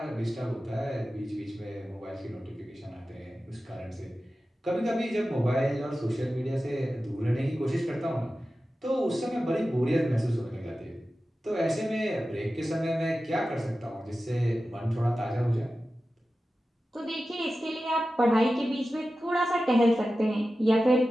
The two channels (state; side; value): normal; both; correlation 0.94